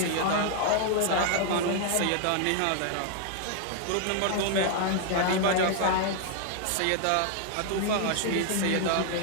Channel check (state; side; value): different; both; correlation 0.00